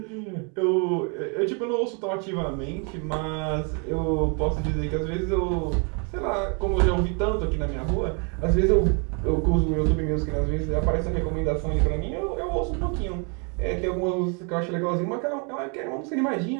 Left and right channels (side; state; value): left; quieter; 36.3 dB